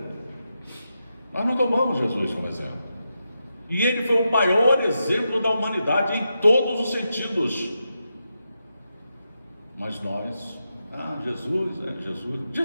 Nós não tomamos Jesus como exemplo. E ele foi o maior exemplo da humanidade em todos os sentidos. Mas nós,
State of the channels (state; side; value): inverted; both; correlation -0.87